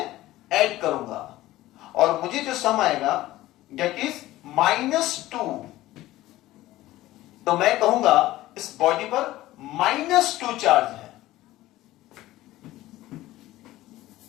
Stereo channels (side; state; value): right; quieter; 16.3 dB